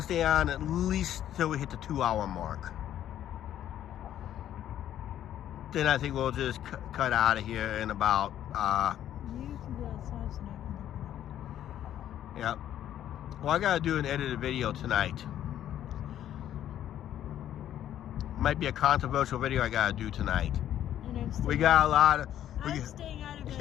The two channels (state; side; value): quieter; right; 11.3 dB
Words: stay on at least till we hit the 2-hour mark. Then I think we'll just cut out of here in about, You can be outside so I can yeah. Well, I got to do an edited video tonight. Might be a controversial video I got to do tonight. look at it. And I'm staying, We got a lot of... I'm staying out of